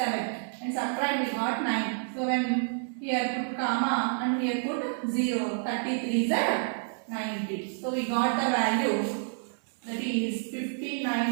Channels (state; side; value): silent; left; 58 dB below the other